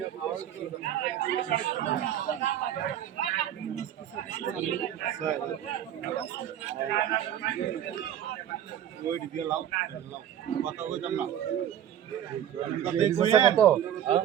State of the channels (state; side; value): quieter; left; 10.4 dB